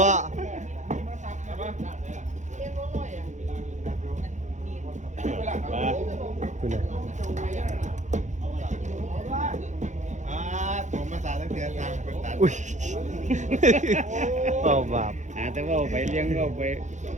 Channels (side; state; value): left; late; 0.35 ms